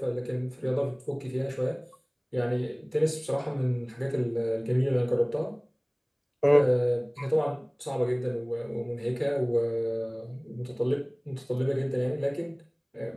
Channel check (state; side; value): identical; both; correlation 1.00